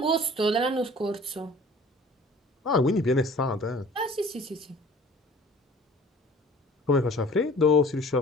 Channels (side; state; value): both; normal; correlation 0.48